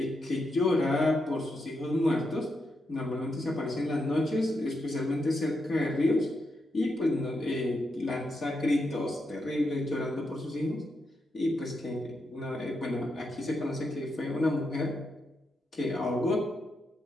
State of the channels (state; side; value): normal; both; correlation 0.84